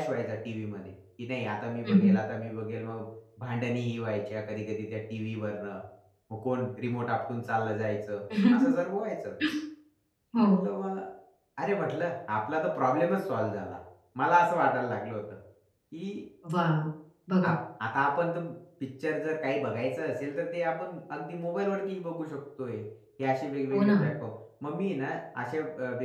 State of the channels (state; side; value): identical; both; correlation 1.00